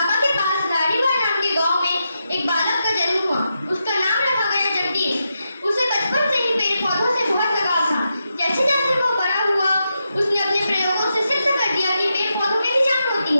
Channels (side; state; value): both; inverted; correlation -0.86